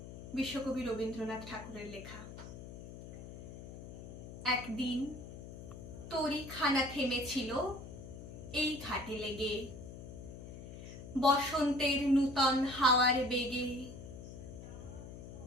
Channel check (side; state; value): left; noise; hum, 12 dB below the sound